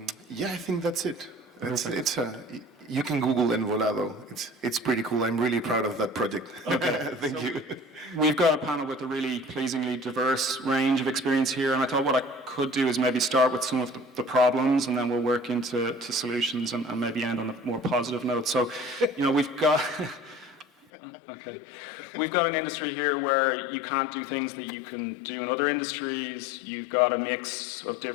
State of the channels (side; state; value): right; drops out; at 20.9 s